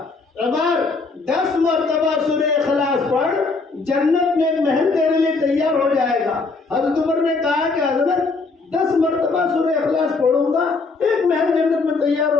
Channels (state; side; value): quieter; right; 4.0 dB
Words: عمر 10 مرتبہ سورہ اخلاص پڑھ, جنت میں ایک محل تیرے لیے تیار ہو جائے گا. حضرت عمر نے کہا کہ حضرت 10 مرتبہ سورہ اخلاص پڑھوں گا, ایک محل جنت میں تیار